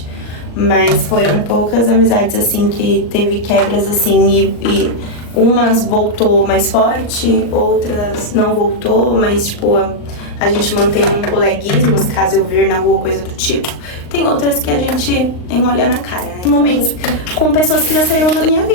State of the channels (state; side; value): late; right; 39 ms